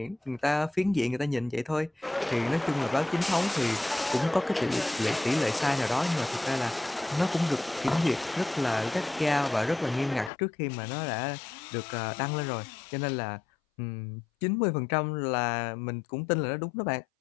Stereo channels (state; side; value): drops out; right; at 10.3 s